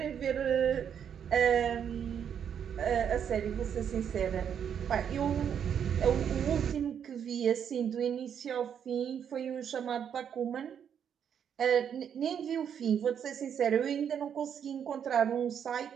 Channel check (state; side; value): quieter; left; 8.3 dB